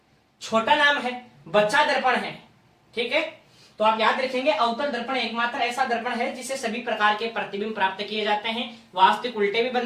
छोटा नाम है, बच्चा दर्पण है। ठीक है, तो आप याद रखेंगे अवतल दर्पण एकमात्र ऐसा दर्पण है जिससे सभी प्रकार के प्रतिबिंब प्राप्त किए जाते हैं। वास्तविक उल्टे भी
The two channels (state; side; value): identical; both; correlation 1.00